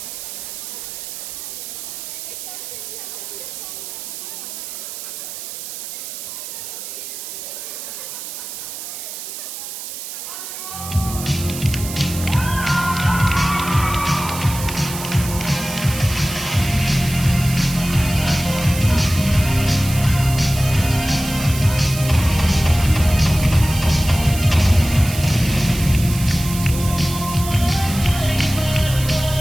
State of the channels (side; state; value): right; noise; hiss, 9 dB below the sound